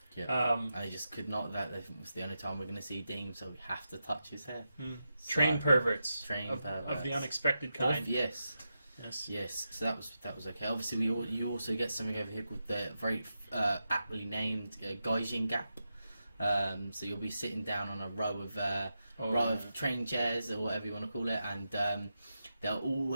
Yeah. And they just could not. That was the only time we're going to see Dean, so we have to touch his hair. So, train perverts. Perverts Of the unexpected kind. Yes. So that was okay. Obviously, you also get something over here called the very aptly named Gaijin Gap. So you'll be sitting down on a row of train chairs or whatever you want to call it, and there'll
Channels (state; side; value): inverted; both; correlation -0.88